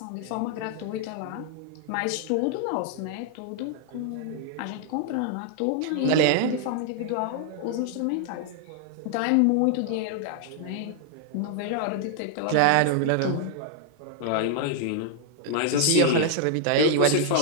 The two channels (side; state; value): both; different; correlation 0.00